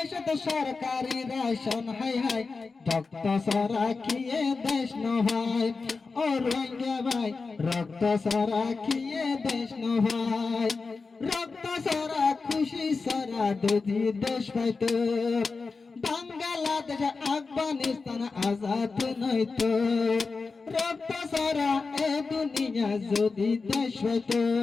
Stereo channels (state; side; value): quieter; right; 4.3 dB